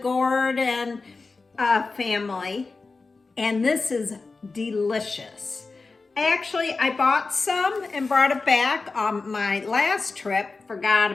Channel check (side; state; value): right; quieter; 4.0 dB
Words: and family. And this is delicious. I bought some and brought it back on my last trip, forgot